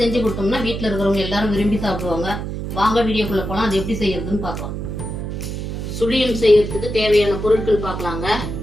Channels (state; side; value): noise; right; hum, 5 dB below the sound